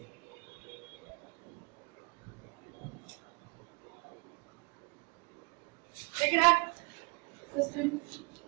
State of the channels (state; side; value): quieter; left; 30.9 dB